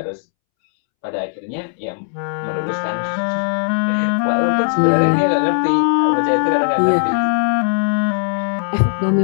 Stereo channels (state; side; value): silent; right; 67 dB below the other